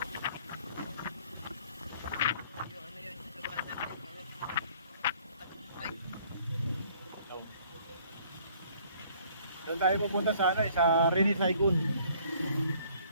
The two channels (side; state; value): both; inverted; correlation -0.58